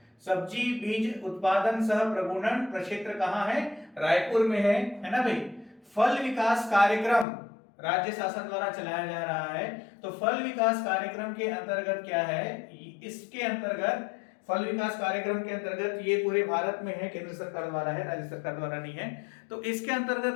सब्जी बीज उत्पादन सह प्रगुणन प्रक्षेत्र कहां है? रायपुर में है ना भाई। फल विकास कार्यक्रम राज्य शासन द्वारा चलाया जा रहा है। तो फल विकास कार्यक्रम के अंतर्गत क्या है? इसके अंतर्गत फल विकास कार्यक्रम के अंतर्गत ये पूरे भारत में है, केंद्र सरकार द्वारा है, राज्य सरकार द्वारा नहीं है। तो इसके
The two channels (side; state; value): right; drops out; at 7.2 s